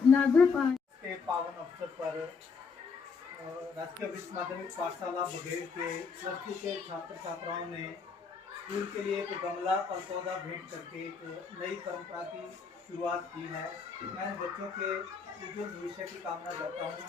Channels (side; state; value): right; quieter; 5.3 dB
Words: लागू पाठ के पावन अवसर पर राजकीय वरिष्ठ माध्यमिक पाठशाला बघेड़ के +2 के छात्र छात्राओं ने स्कूल के लिए एक गमला और पौधा भेंट करके एक नई परंपरा की शुरुआत की है। मैं बच्चों के उज्जवल भविष्य की कामना करता हूँ